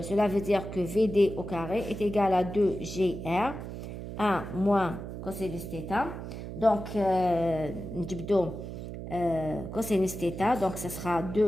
veut dire que Vd au carré est égal à 2gr, 1 moins cosinus θ. Donc, cosinus θ, donc ce sera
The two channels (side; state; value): right; noise; hum, 8 dB below the sound